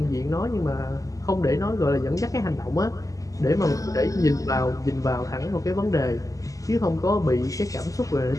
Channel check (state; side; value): late; right; 0.16 ms